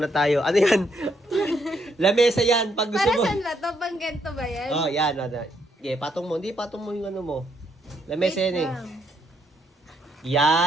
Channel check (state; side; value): normal; both; correlation 0.74